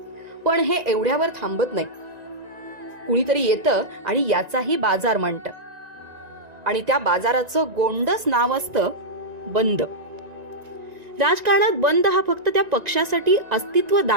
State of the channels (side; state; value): left; late; 1.9 ms